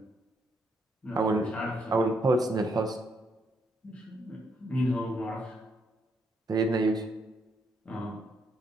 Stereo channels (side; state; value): both; normal; correlation 0.75